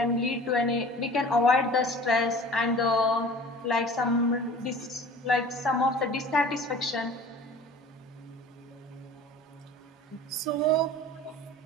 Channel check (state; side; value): normal; both; correlation 0.43